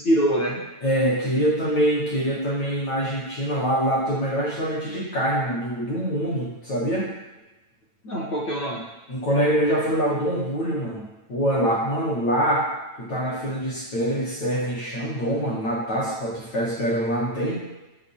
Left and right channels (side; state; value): right; late; 9.0 ms